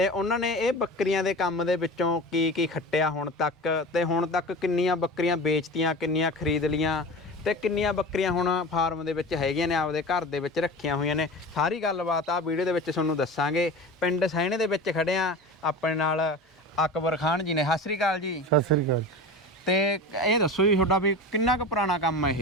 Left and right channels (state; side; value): normal; both; correlation 0.32